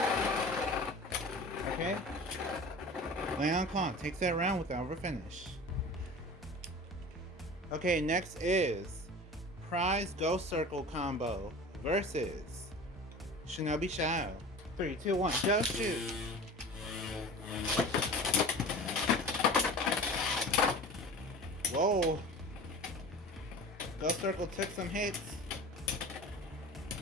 Okay. Claw takes that round with the overfinish. Okay, next is Prize Ghost Circle combo versus Shinobi Shadow. 3, 2, 1, go shoot. Whoa. Ghost Circle took some hits.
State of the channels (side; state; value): both; normal; correlation 0.37